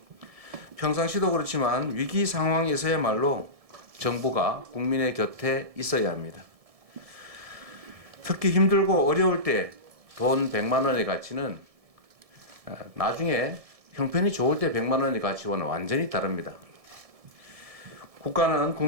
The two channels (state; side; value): late; left; 1.7 ms